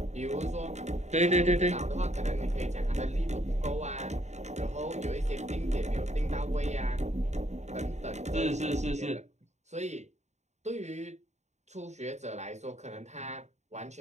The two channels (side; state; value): left; late; 0.33 ms